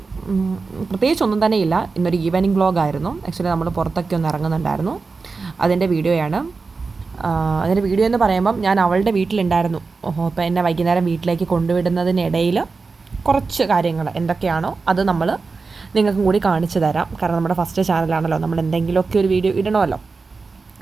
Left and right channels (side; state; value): left; quieter; 4.3 dB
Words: പ്രത്യേകിച്ചൊന്നും തന്നെ ഇല്ല, ഇന്നൊരു ഈവനിങ് വ്ളോഗായിരുന്നു. ആക്ച്വലി നമ്മൾ പുറത്തൊക്കെ ഒന്ന് ഇറങ്ങുന്നുണ്ടായിരുന്നു, അതിൻ്റെ വീഡിയോയാണ്. അതിൻ്റെ വീഡിയോ എന്ന് പറയുമ്പം ഞാൻ അവളുടെ വീട്ടിലുണ്ടായിരുന്നു. അപ്പോൾ എന്നെ വൈകുന്നേരം വീട്ടിലേക്ക് കൊണ്ടുവിടുന്നതിനിടയിൽ കുറച്ച് കാര്യങ്ങൾ എന്തൊക്കെയാണോ അത് നമ്മൾ നിങ്ങൾക്കും കൂടി കാണിച്ചു തരാം. കാരണം നമ്മുടെ ഫസ്റ്റ് ചാനലാണല്ലോ, നമ്മൾ എന്തെങ്കിലുമൊക്കെ ഒരു വീഡിയോ ഇടണമല്ലോ.